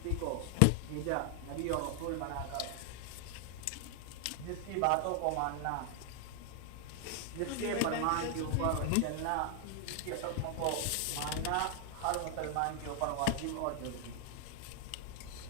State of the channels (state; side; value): different; both; correlation 0.00